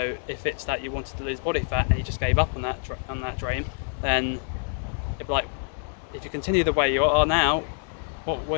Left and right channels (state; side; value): silent; right; 61 dB below the other